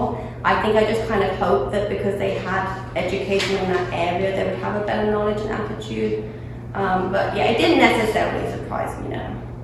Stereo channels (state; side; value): identical; both; correlation 1.00